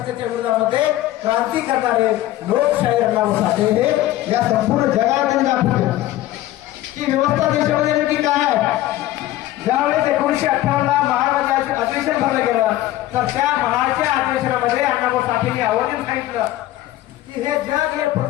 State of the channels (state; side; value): quieter; right; 15.0 dB